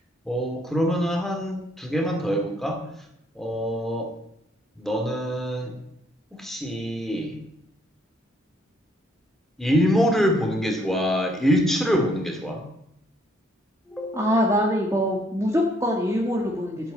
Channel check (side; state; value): both; normal; correlation 0.67